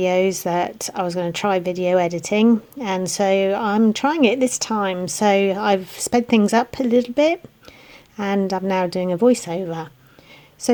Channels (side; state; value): both; identical; correlation 1.00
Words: that I was going to try video editing, and so I'm trying it this time. So, I've sped things up a little bit, and I'm now doing a voiceover. So,